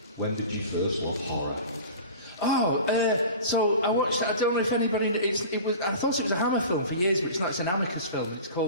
When did you first love horror? So I watched. I don't know if anybody. It was. I thought it was a Hammer film for years, but it's not. It's an Amicus film. It's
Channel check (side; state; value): both; inverted; correlation -0.37